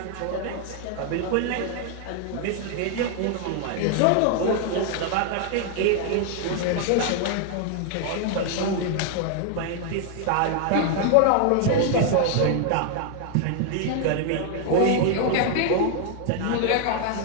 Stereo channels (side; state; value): both; different; correlation 0.00